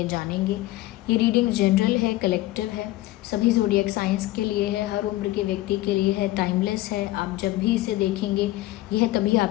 जानेंगे। ये रीडिंग जनरल है, कलेक्टिव है, सभी ज़ोडिएक साइंस के लिए है, हर उम्र के व्यक्ति के लिए है, टाइमलेस है। आप जब भी इसे देखेंगे यह तभी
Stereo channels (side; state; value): right; quieter; 17.1 dB